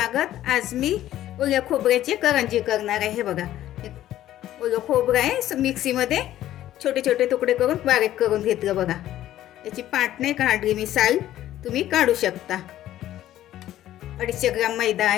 आज मी ओल्या खोबऱ्याची करंजी करणार आहे. हे बघा, ओलं खोबरं आहे, मिक्सीमध्ये छोटे छोटे तुकडे करून बारीक करून घेतलं. बघा, याची पाट नाही काढली मी, साल तुम्ही काढू शकता. 250 ग्राम मैदा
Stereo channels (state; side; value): quieter; right; 13.1 dB